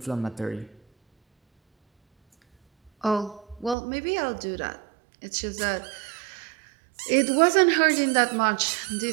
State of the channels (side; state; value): left; drops out; at 3.8 s